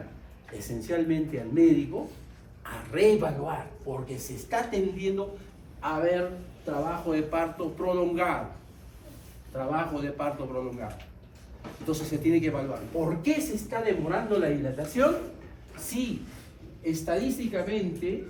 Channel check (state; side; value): identical; both; correlation 1.00